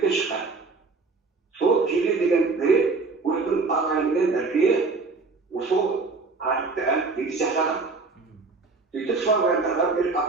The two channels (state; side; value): quieter; left; 4.1 dB